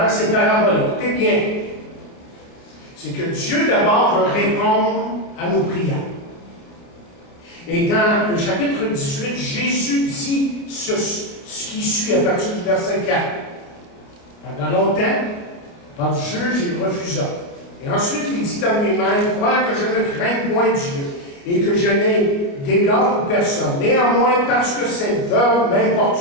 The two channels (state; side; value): late; right; 29 ms